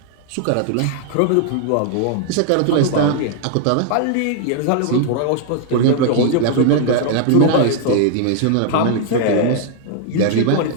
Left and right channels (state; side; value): different; both; correlation 0.00